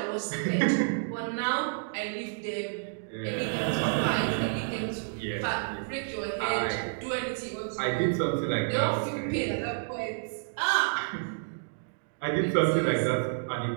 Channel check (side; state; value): left; silent; digital silence